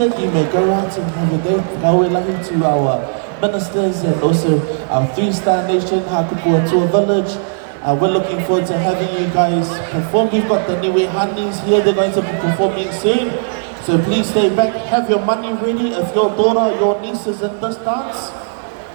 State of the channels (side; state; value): left; silent; 55 dB below the other